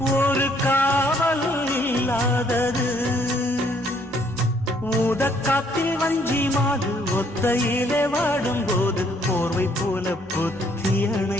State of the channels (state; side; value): normal; both; correlation 0.66